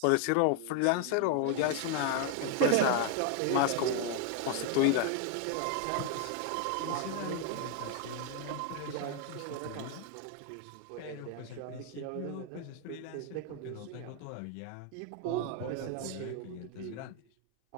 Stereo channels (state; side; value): different; both; correlation 0.01